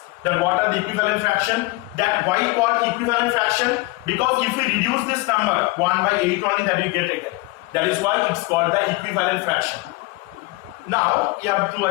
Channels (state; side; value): quieter; right; 22.8 dB